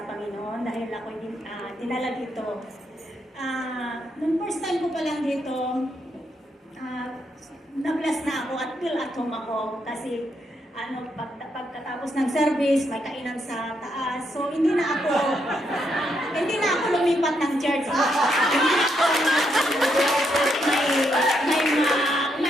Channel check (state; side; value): normal; both; correlation 0.78